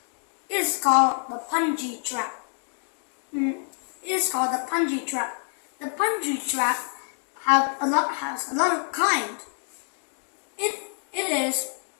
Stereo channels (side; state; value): right; silent; digital silence